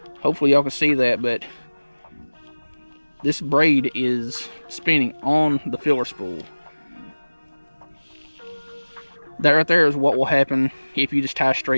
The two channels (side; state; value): both; inverted; correlation -1.00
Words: Hopefully y'all can see that, but this braid is spinning on the filler spool. That right there is what will happen if you just tie